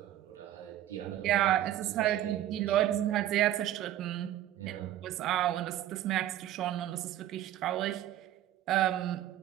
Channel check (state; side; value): quieter; left; 12.7 dB